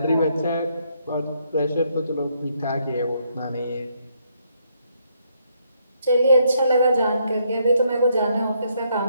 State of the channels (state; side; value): inverted; both; correlation -0.73